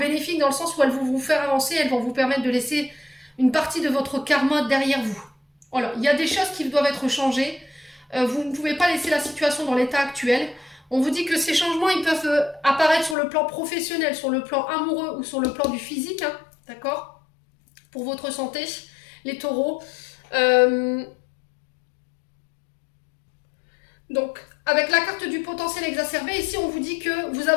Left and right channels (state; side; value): drops out; right; at 13.2 s